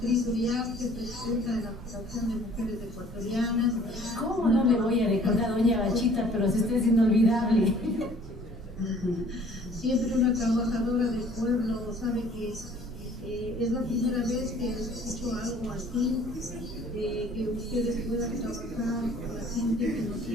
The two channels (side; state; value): both; normal; correlation 0.54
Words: Uriarte, presidenta de la Asociación de Mujeres Ecuatorianas. ¿Cómo no le voy a recordar a doña Bachita? Pero si usted es inolvidable. Siempre una trabajadora del pueblo, sabe que es la primera vez que escucho algo así, que ustedes puedan trabajar por la gente que no